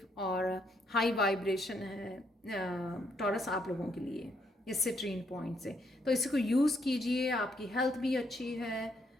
और हाई वाइब्रेशन है टॉरस आप लोगों के लिए इस सिट्रीन पॉइंट से। तो इसी को यूज़ कीजिए, आपकी हेल्थ भी अच्छी है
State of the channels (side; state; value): both; normal; correlation 0.74